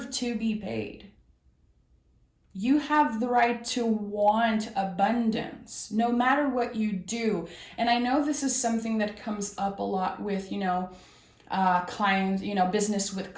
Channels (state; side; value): identical; both; correlation 1.00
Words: to be paid. You have the right to want abundance, no matter what you do. And I know this is something that comes up a lot with, clients, business with